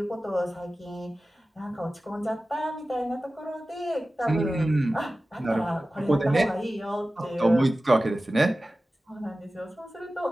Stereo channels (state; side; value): normal; both; correlation 0.96